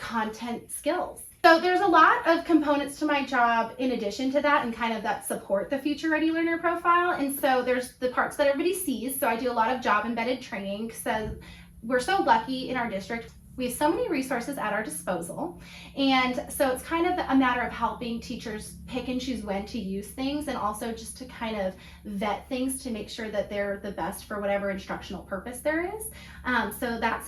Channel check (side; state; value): both; identical; correlation 1.00